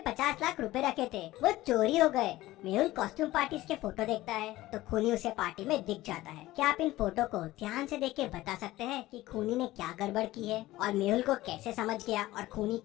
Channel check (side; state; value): right; quieter; 17.0 dB